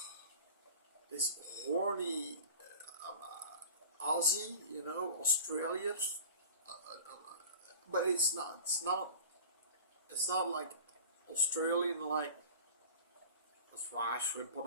horny Aussie, Australian, but it's not like Australian, like that's why I shrimp on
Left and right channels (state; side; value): inverted; both; correlation -0.38